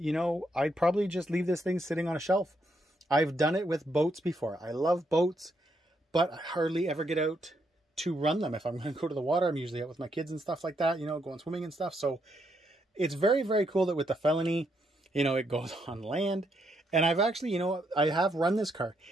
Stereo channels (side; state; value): both; normal; correlation 0.77